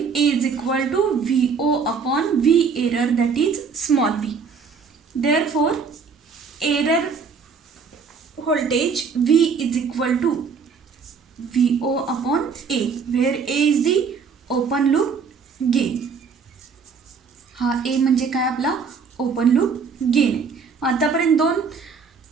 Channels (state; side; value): quieter; left; 5.5 dB